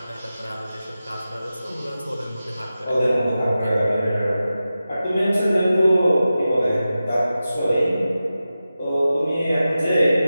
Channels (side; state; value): both; inverted; correlation -0.93